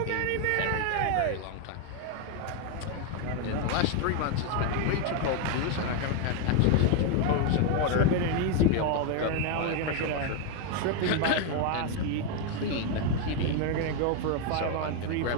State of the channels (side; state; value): both; different; correlation 0.01